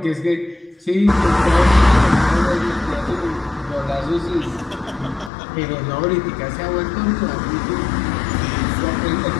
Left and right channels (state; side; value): drops out; right; at 5.3 s